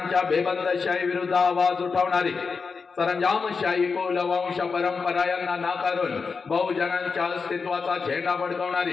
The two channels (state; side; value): quieter; right; 5.0 dB